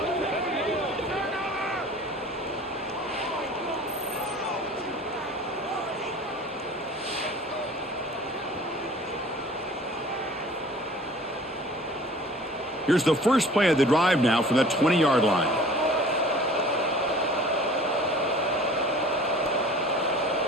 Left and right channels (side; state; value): both; normal; correlation 0.46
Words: Here's the first play of the drive now from the 20-yard line.